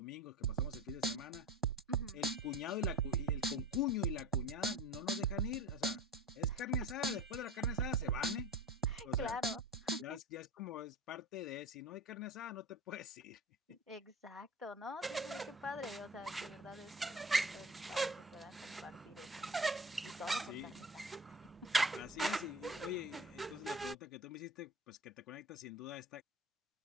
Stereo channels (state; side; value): normal; both; correlation 0.35